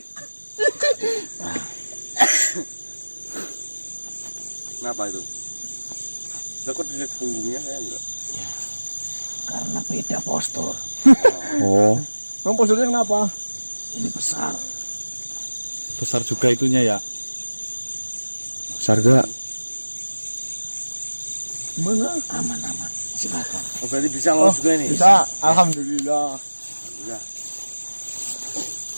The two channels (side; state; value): both; inverted; correlation -1.00